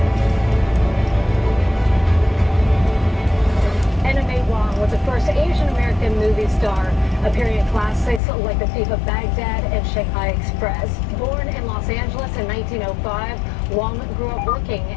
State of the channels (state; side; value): drops out; right; at 8.2 s